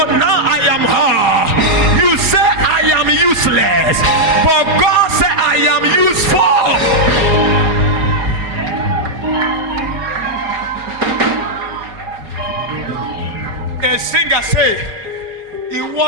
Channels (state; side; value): late; left; 4.9 ms